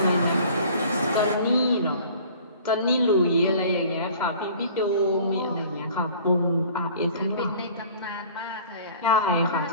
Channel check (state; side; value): inverted; both; correlation -0.48